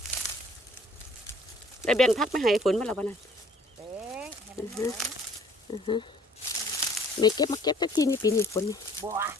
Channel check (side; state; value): both; normal; correlation 0.56